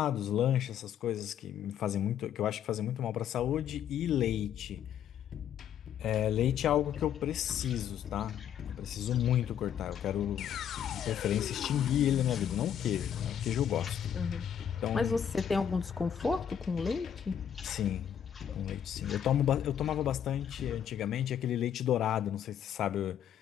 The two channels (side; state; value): right; quieter; 9.2 dB